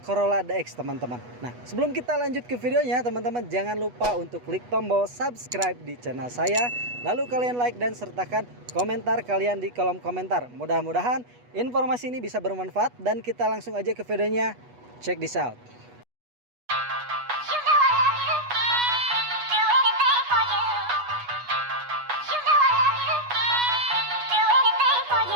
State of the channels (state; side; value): late; left; 8.2 ms